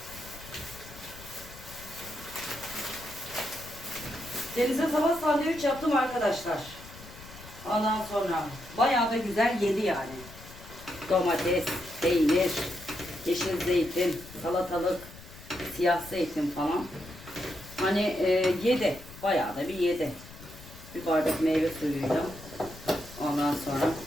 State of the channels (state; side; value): noise; left; rumble, 17 dB below the sound